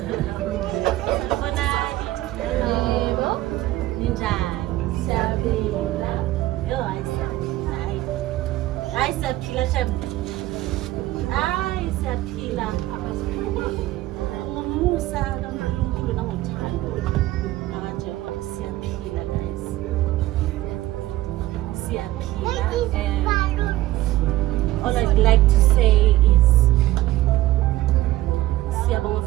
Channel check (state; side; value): quieter; left; 16.2 dB